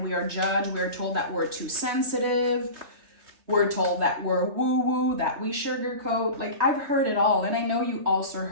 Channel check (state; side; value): late; left; 3.3 ms